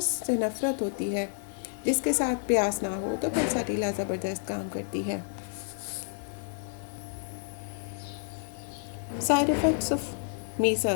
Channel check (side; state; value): right; silent; digital silence